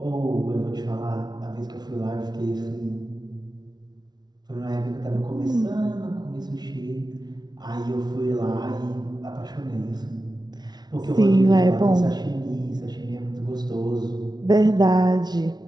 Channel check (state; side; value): late; left; 0.19 ms